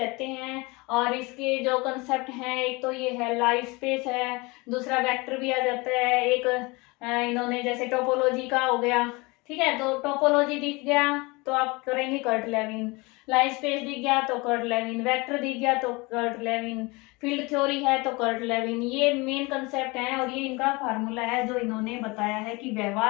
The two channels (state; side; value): quieter; right; 25.3 dB